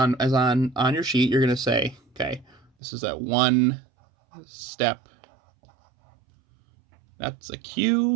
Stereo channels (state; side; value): drops out; left; at 2.7 s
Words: your sheet, you're gonna say, okay, this is a one step. That's a